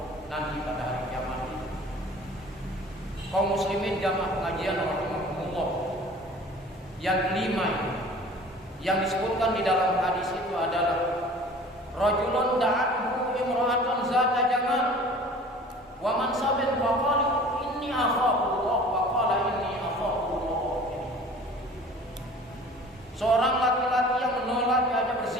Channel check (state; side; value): normal; both; correlation 0.45